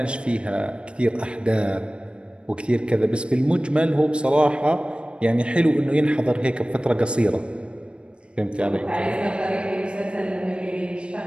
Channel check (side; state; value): left; late; 0.057 ms